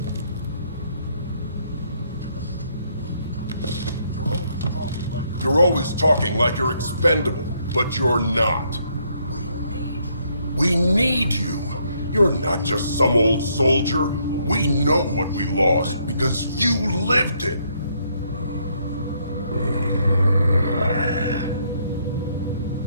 You're always talking like you're expendable, but you're not. We need you. You're not just some old soldier. We know what we lost because you lived it.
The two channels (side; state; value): both; inverted; correlation -0.71